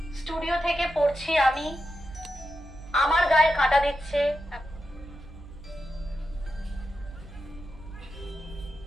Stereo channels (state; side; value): noise; right; hum, 16 dB below the sound